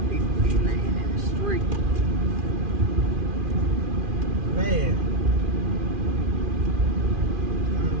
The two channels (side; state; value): left; late; 2.4 ms